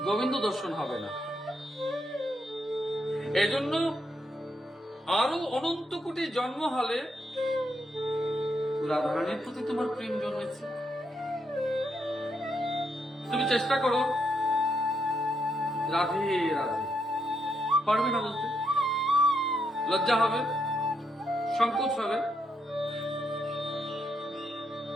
গোবিন্দ দর্শন হবে না। এজন্য আরো অনন্ত কোটি জন্ম হলে রাধারানীর প্রতি তোমার প্রেম জন্মেছে। তুমি চেষ্টা করো রাধে রাধে, পারবে না বলতে, লজ্জা হবে, সংকোচ হবে,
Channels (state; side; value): normal; both; correlation 0.78